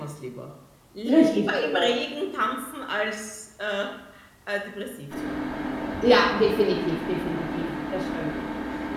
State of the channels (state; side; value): identical; both; correlation 1.00